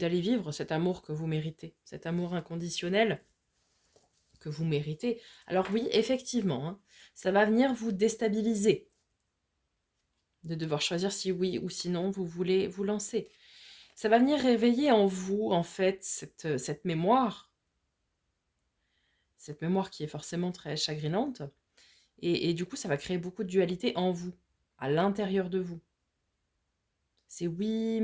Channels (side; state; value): both; identical; correlation 1.00